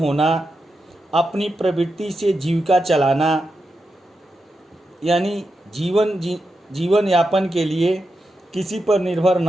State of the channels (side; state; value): both; normal; correlation 0.88